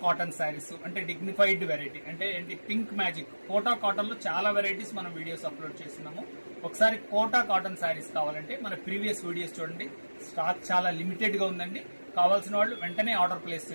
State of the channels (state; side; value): inverted; both; correlation -1.00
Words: cotton saris అంటే డిగ్నిఫైడ్ వెరైటీ అంటే ఏంటి పింక్ మ్యాజిక్ కోటా కాటన్ లో చాలా వెరైటీస్ మనం వీడియోస్ అప్లోడ్ చేస్తున్నాము. ఒకసారి కోటా కాటన్ శారీస్ కావాలంటే మన ప్రీవియస్ వీడియోస్ చూడండి. స్టాక్ చాలా లిమిటెడ్ గా ఉందండి. కావాల్సిన వాళ్ళు వెంటనే ఆర్డర్ ప్లేస్